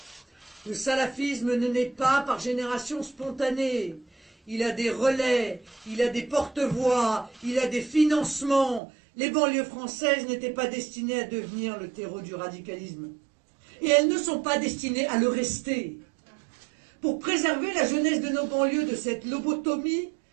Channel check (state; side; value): drops out; left; at 8.8 s